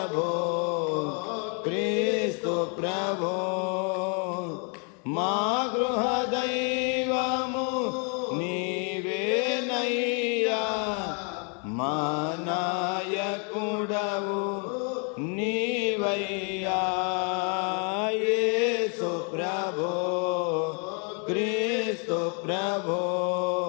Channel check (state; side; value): quieter; right; 37.9 dB